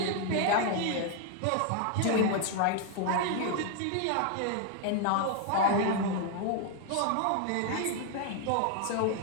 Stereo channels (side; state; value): both; different; correlation 0.00